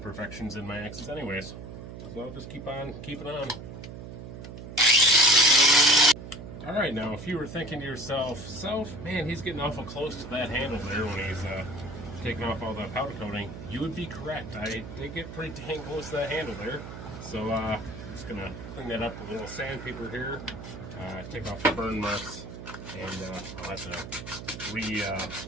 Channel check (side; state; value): right; noise; hum, 11 dB below the sound